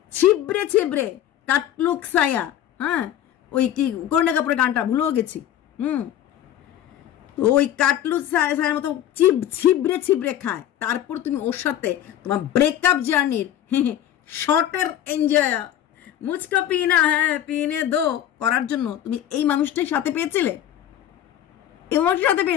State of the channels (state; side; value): quieter; right; 11.3 dB